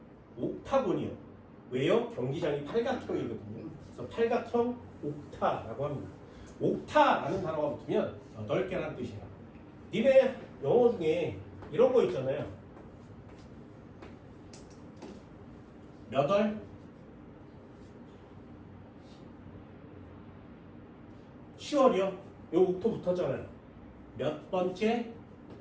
옥타곤이요. 왜요? 경기장이 팔각형이거든요. 그래서 팔각형 옥타라고 합니다. 옥타라는 단어가 붙으면 8개라는 뜻이에요. 니네 영어 중에 이런 거 있잖아요. 몇 월? 10월이요. 요 옥토 붙었잖아요. 몇 번째?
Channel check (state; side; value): identical; both; correlation 1.00